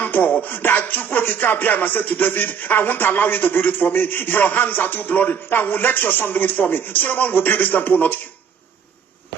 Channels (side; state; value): left; quieter; 7.1 dB